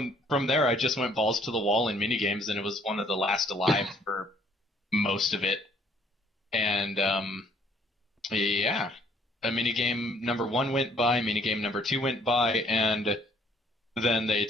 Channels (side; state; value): both; normal; correlation 0.62